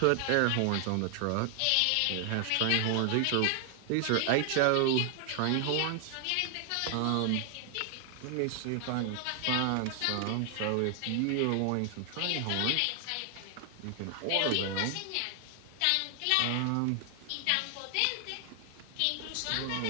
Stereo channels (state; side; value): different; both; correlation 0.00